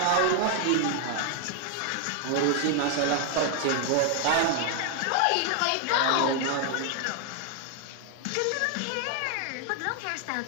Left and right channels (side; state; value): both; different; correlation 0.00